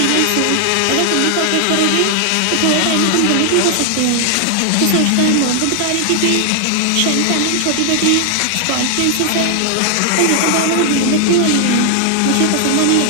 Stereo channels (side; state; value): both; different; correlation 0.00